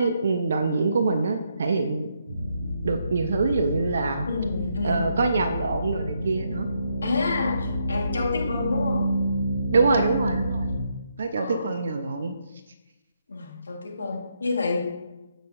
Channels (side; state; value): both; inverted; correlation -0.77